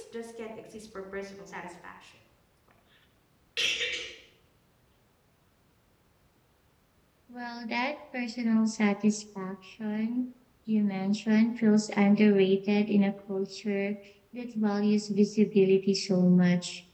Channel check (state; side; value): identical; both; correlation 1.00